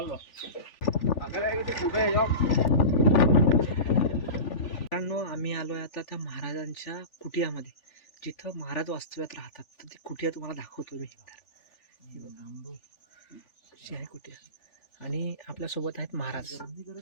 मित्रांनो, आम्ही आलोय आता त्या महाराजांच्या कुटियामध्ये, जिथं महाराज वास्तव्यात राहतात. तर ती कुटिया तुम्हाला दाखवतो मी. आहे कुटिया आणि आपल्यासोबत आहेत महाराज.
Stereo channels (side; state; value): right; late; 3.4 ms